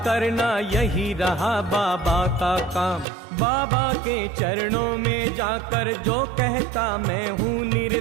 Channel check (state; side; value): drops out; left; at 3.1 s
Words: करना यही रहा बाबा का काम। बाबा के चरणों में जाकर जो कहता मैं हूँ